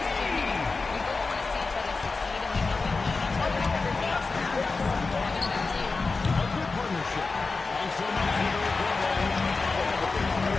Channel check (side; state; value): right; quieter; 4.0 dB